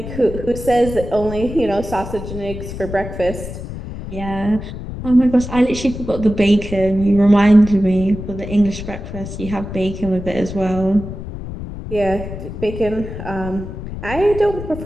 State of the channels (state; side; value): noise; left; rumble, 9 dB below the sound